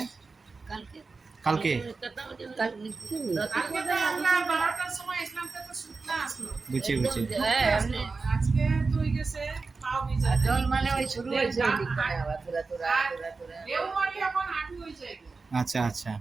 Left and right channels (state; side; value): quieter; left; 4.2 dB